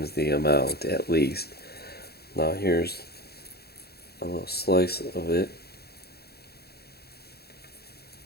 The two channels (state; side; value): late; right; 0.46 ms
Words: the amount, at least. Now here's a little slice of it.